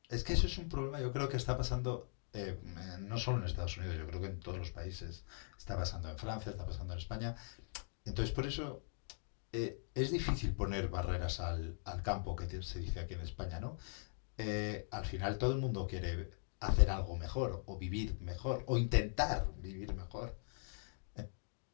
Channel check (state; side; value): silent; right; digital silence